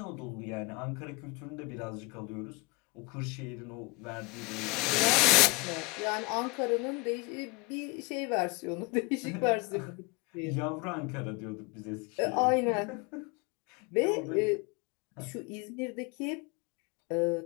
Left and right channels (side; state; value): right; quieter; 26.7 dB